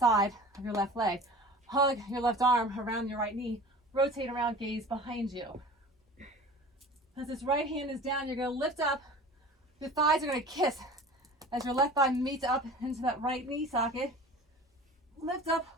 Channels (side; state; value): both; normal; correlation 0.40